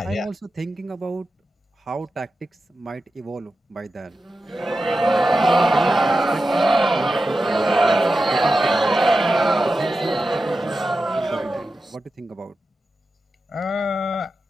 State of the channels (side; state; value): both; normal; correlation 0.91